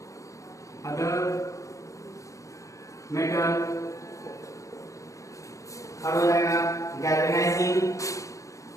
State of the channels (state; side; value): late; right; 0.15 ms